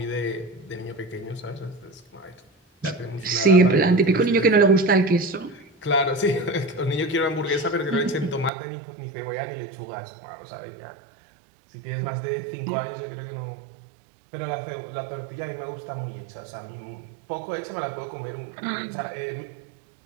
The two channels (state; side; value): drops out; left; at 8.5 s